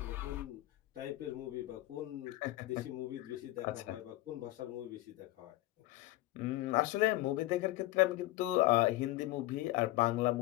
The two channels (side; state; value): right; quieter; 17.5 dB